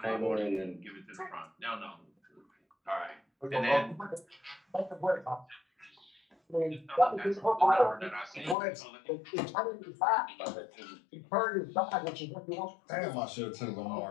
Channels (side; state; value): right; drops out; at 8.6 s